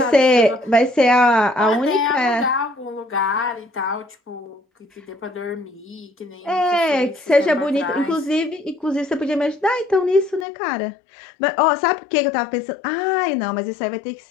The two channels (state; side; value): drops out; right; at 10.5 s